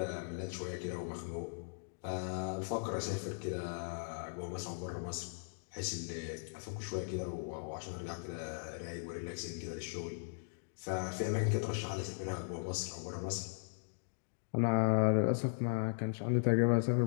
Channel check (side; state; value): right; silent; digital silence